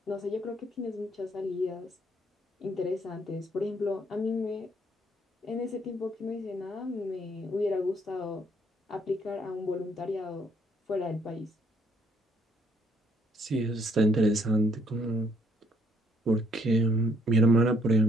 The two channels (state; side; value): normal; both; correlation 0.67